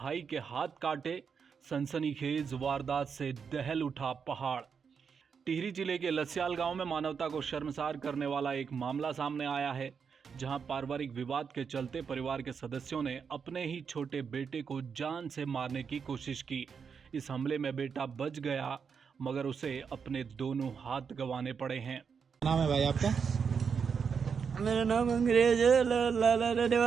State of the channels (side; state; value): left; quieter; 6.3 dB